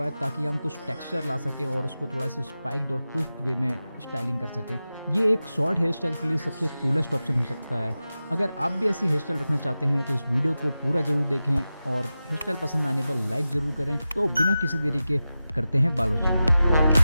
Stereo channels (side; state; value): both; inverted; correlation -0.93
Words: है ताकि हम कुछ टेक्सचर ला सकें और उसको थोड़ा सा स्पाइक्ड और क्विक वे में स्टाइलिंग कर सकें। ये एक शॉर्ट हेयर स्टाइल के लिए सबसे कूलेस्ट ऑप्शन हो सकता है। अगर आप भी ऐसी हेयर स्टाइल रखना चाहते हैं तो इस वीडियो को पूरा जरूर देखें और हेयर स्टाइल पसंद आने पर लाइक जरूर करें। तो बिना किसी देरी के करते हैं बालोचन।